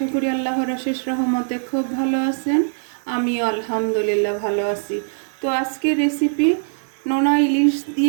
করি আল্লাহর অশেষ রহমতে খুব ভালো আছেন। আমিও আলহামদুলিল্লাহ ভালো আছি। তো আজকে রেসিপি নোনা ইলিশ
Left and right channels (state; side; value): silent; left; digital silence